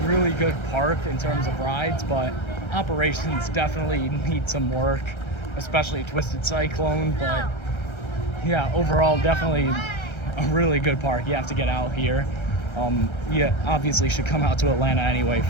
really good park in terms of rides, but operations definitely need some work, especially Twisted Cyclone. But yeah, overall, definitely a really good park. You have to get out here. You obviously should come out to Atlanta anyway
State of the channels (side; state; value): right; late; 1.3 ms